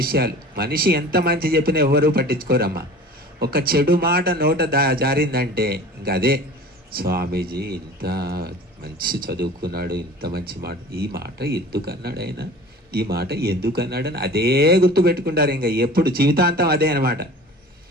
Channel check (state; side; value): normal; both; correlation 0.41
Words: మనిషి ఎంత మంచి చెప్పినా ఎవరూ పట్టించుకోరమ్మా. ఒక చెడు మాట నోట జారిందంటే ఇంకా అదే, స్వామీజీ ఇంత మంచి చదువుకున్నాడు, ఇంత మంచి మాట, ఈ మాట ఎందుకన్నాడు ఆయన, ఈ మాట ఎందుకన్నాడని అదే గుర్తుపెట్టుకుంటారు. ఇంకా ఎప్పుడు జీవితాంతం అదే అనమాట.